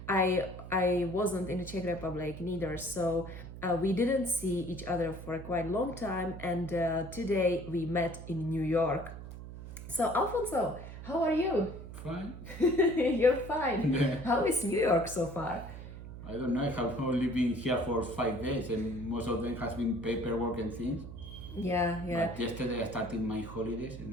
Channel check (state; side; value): noise; right; hum, 11 dB below the sound